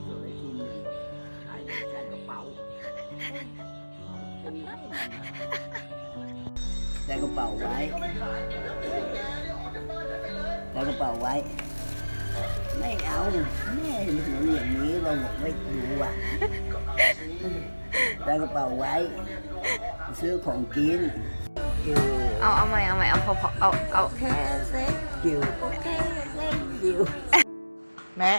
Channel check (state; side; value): inverted; both; correlation -1.00